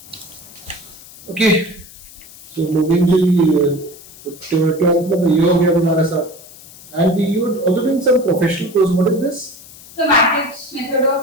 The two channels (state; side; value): noise; left; hiss, 20 dB below the sound